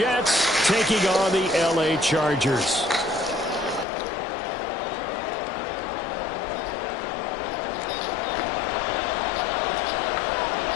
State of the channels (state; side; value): drops out; right; at 3.9 s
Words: taking on the LA Chargers.